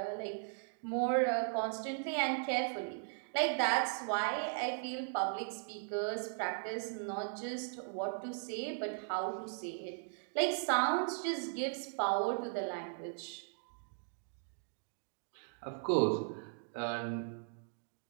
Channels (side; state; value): left; silent; digital silence